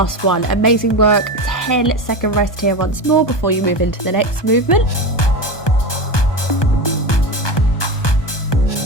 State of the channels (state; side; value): late; right; 1.2 ms